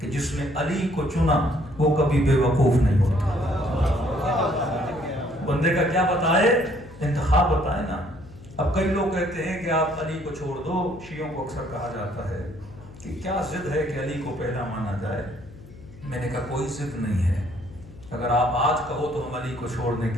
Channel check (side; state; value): left; noise; hum, 19 dB below the sound